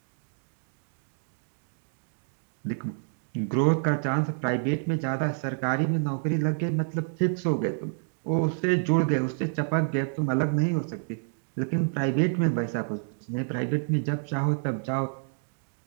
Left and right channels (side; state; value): left; silent; 59 dB below the other